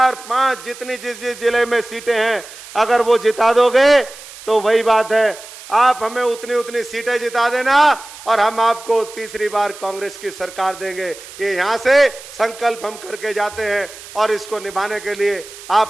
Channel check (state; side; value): noise; right; hiss, 16 dB below the sound